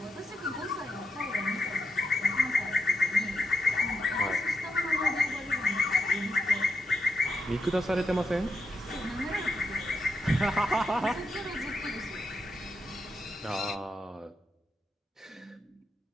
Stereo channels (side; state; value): both; normal; correlation 0.84